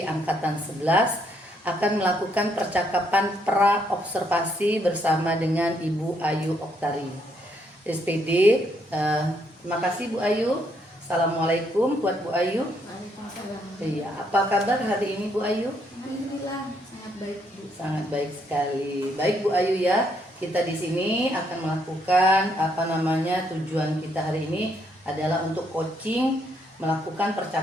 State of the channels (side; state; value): both; normal; correlation 0.73